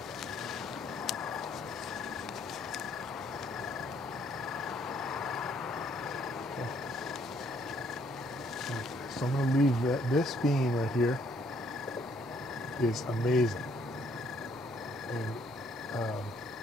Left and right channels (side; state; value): both; normal; correlation 0.66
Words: So I'm gonna leave this bean right here is amazing. And